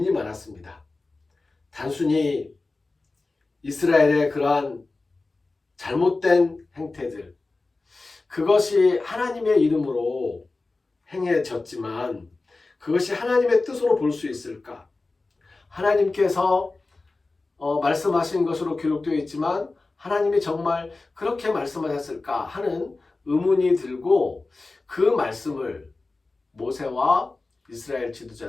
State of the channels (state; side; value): quieter; right; 3.5 dB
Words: 많았습니다. 단순히 이스라엘의 그러한 잘못된 행태들, 그것이 하나님의 이름으로 행해졌지만 그것이 하나님의 뜻으로 볼 수 있을까? 하나님께서 말씀하신 것으로 기록되어 있지만 하나님이 정말 그렇게 말씀하셨을까 하는 의문이 들고 그 말씀을 모세와 이스라엘